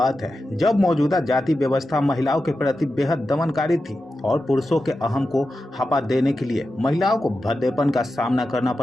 है, जब मौजूदा जाति व्यवस्था महिलाओं के प्रति बेहद दमनकारी थी और पुरुषों के अहम को हपा देने के लिए महिलाओं को भद्देपन का सामना करना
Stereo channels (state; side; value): normal; both; correlation 0.91